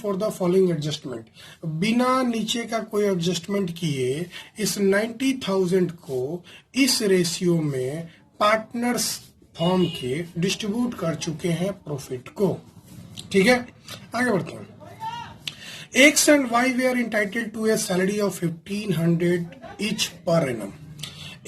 the following adjustment. बिना नीचे का कोई एडजस्टमेंट किए इस 90,000 को इस रेशियो में पार्टनर्स फर्म के डिस्ट्रीब्यूट कर चुके हैं प्रॉफिट को। ठीक है, आगे बढ़ते हैं। X and Y were entitled to a salary of 1500 each per annum।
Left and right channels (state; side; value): identical; both; correlation 1.00